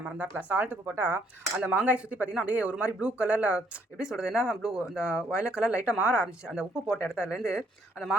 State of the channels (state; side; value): normal; both; correlation 0.68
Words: மறந்தாப்பில். சால்ட் உப்பு போட்டால் அந்த மாங்காய் சுற்றி பார்த்தீங்கன்னா அப்படியே ஒரு மாதிரி ப்ளூ கலரில் எப்படி சொல்கிறது, என்ன ப்ளூ அந்த வயலட் கலர் லைட்டாக மாற ஆரம்பிச்சு. அந்த உப்பு போட்ட இடத்துலேருந்து அந்த